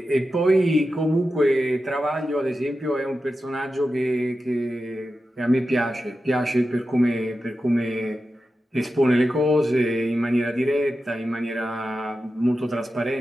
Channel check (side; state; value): both; normal; correlation 0.91